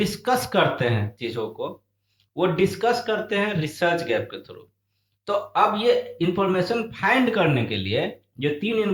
करते हैं, चीजों को वो डिस्कस करते हैं रिसर्च गैप के थ्रू। तो अब ये इंफॉर्मेशन फाइंड करने के लिए जो 3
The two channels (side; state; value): both; identical; correlation 1.00